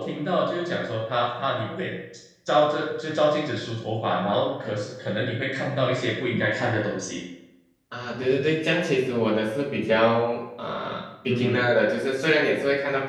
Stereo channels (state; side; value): identical; both; correlation 1.00